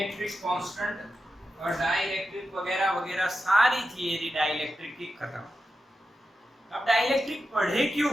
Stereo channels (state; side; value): normal; both; correlation 0.90